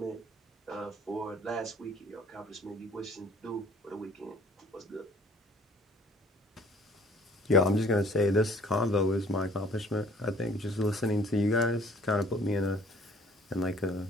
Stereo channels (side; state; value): both; normal; correlation 0.55